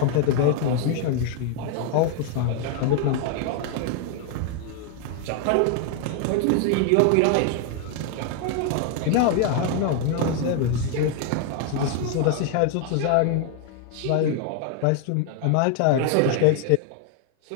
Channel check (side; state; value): both; different; correlation 0.01